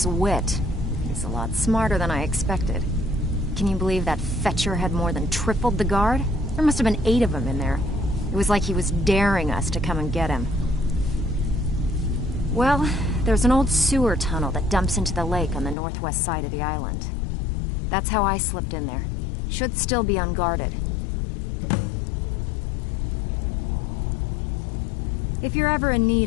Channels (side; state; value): right; drops out; at 15.8 s